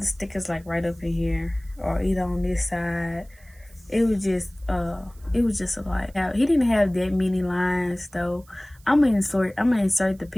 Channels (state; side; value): noise; right; hiss, 29 dB below the sound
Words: stickers like right up in here or either on this side. It was just a lot. He didn't have that many lines though. I'm gonna insert the